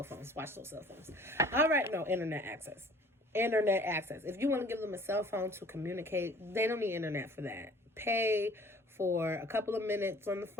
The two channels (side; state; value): both; normal; correlation 0.51